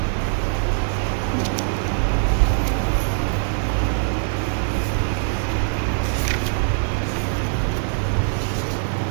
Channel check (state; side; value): silent; left; digital silence